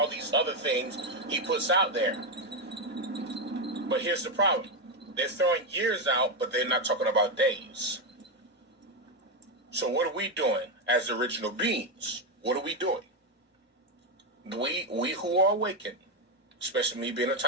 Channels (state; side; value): normal; both; correlation 0.07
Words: these other things he puts out there. But here's the problem. They're throwing years out, but they're not talking about days. So what are we doing as original beings? What are we doing? We who are awakened, especially me being a